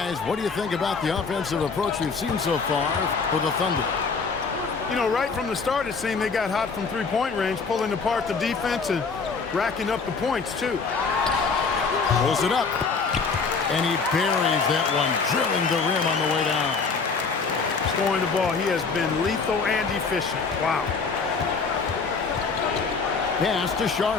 what do you think about the offensive approach we've seen so far for the Thunder? You know, right from the start, it seemed they got hot from three-point range, pulling apart the defense and racking up the points, too. Pulls it up. And he buries that one, drilling the rim on the way down. Scoring the ball, he has been lethal and efficient. Wow. Pass to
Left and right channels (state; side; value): quieter; right; 4.9 dB